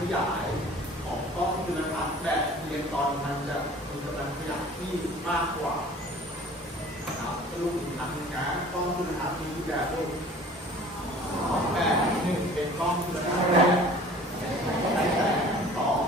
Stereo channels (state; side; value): normal; both; correlation 0.47